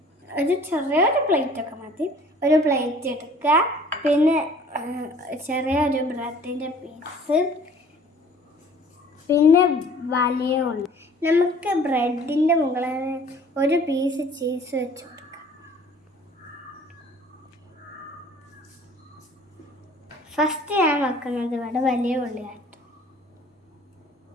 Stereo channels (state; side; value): normal; both; correlation 0.52